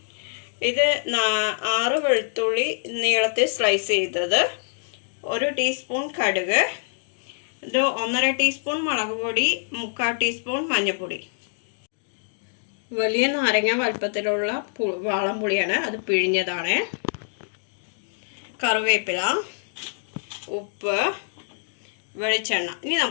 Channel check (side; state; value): right; silent; digital silence